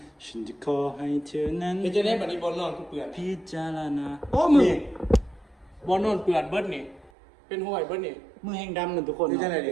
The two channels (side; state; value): left; drops out; at 7.1 s